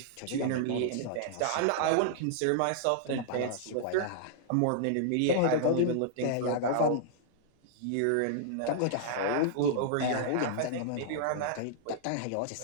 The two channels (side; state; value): both; different; correlation -0.01